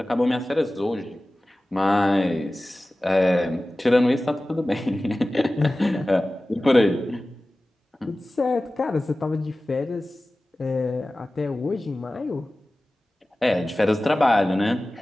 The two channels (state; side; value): normal; both; correlation 0.96